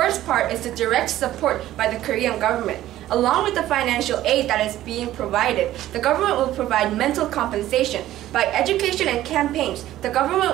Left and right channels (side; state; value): left; quieter; 14.0 dB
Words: part is the direct support by the Korean government. Along with the financial aid that is being provided, the government will provide mental compensation. By education and campaigns, the